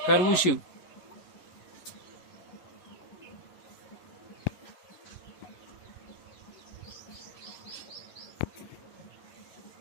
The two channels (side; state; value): right; late; 11 ms